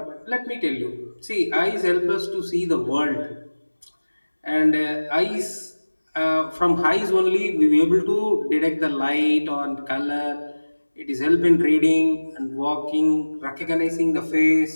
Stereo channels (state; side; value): inverted; both; correlation -1.00